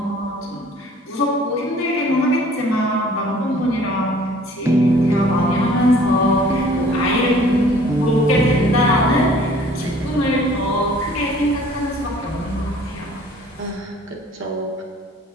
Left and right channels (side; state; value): both; normal; correlation 0.53